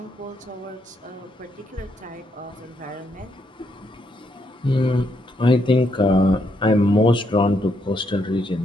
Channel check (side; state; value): both; normal; correlation 0.76